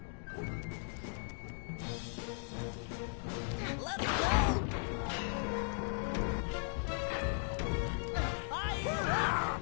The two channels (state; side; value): silent; right; 53 dB below the other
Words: Let him go! Fire!